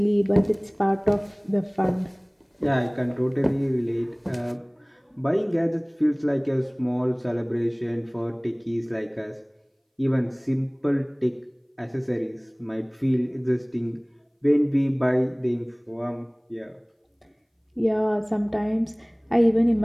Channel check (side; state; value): both; identical; correlation 1.00